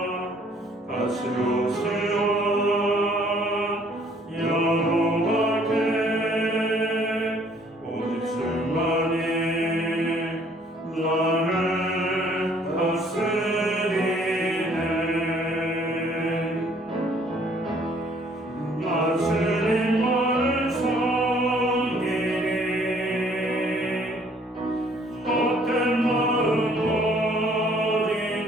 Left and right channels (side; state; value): both; normal; correlation 0.61